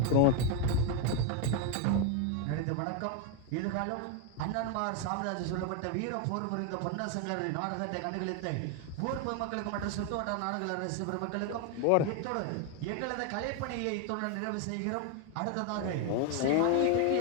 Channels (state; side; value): different; both; correlation 0.01